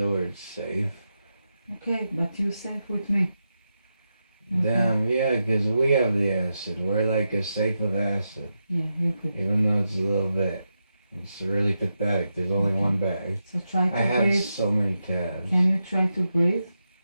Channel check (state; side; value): inverted; both; correlation -0.88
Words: word safe. Okay, but you safe with me. Okay. Damn, yeah, because we have the acid. We're like a safe of acid. Yeah, you could. Even though it's a little bit. It's really pathetic. There's only one bag. So try to I have breathe. so many tabs. Can you try to breathe?